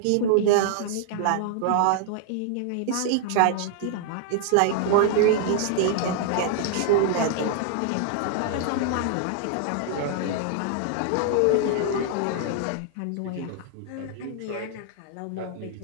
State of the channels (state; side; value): different; both; correlation 0.00